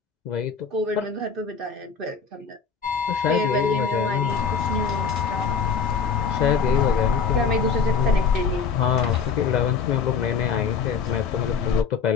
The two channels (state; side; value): quieter; right; 5.8 dB